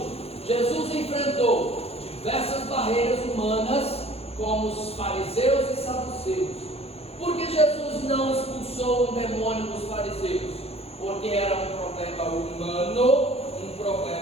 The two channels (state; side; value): late; right; 0.29 ms